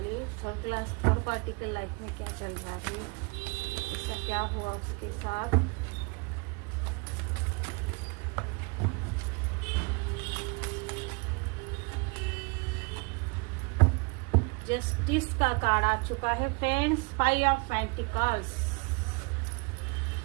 थर्ड पार्टी के लाइफ में क्या चल रहा है, इसका क्या हुआ उसके साथ। जस्टिस का कार्ड आ चुका है फ्रेंड्स, 5 ऑफ पेंटिकल्स।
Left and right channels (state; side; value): quieter; left; 30.6 dB